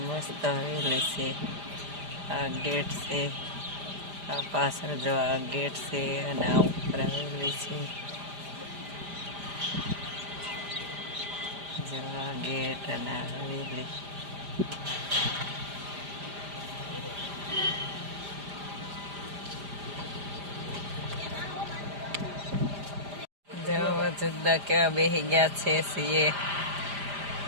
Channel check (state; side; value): late; left; 5.0 ms